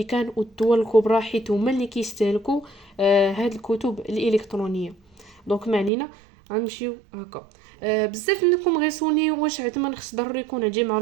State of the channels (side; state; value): left; drops out; at 5.9 s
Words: والدول الكبرى حيت هما اللي كيستهلكوا هاد الكتب الالكترونيه. دونك ما علينا غنمشيو هكا. بزاف منكم غيسولني واش عندما خص ضروري يكون عندي مع